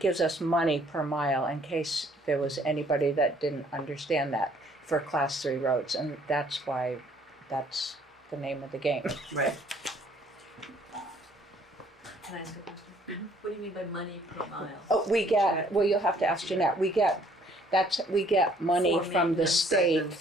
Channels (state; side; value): normal; both; correlation 0.61